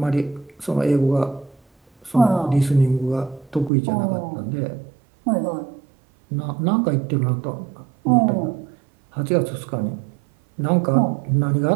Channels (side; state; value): left; drops out; at 3.7 s